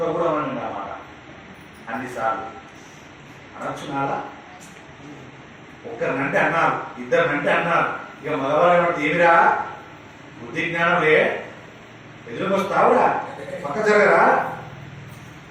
కూడా అనండి అన్నమాట అన్నిసార్లు అనొచ్చు నాలా. ఒక్కరినంటే అన్నారు, ఇద్దరినంటే అన్నారు, ఇక మగవాళ్ళు ఏమిరా బుద్ధి జ్ఞానం లే, ఎదురుకొస్తావురా, పక్క జరగరా,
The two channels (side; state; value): both; identical; correlation 1.00